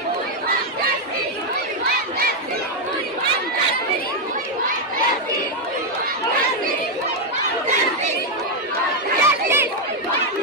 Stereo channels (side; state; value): both; normal; correlation 0.01